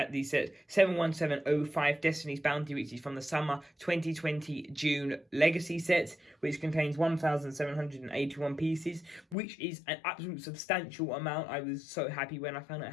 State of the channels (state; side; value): drops out; right; at 9.3 s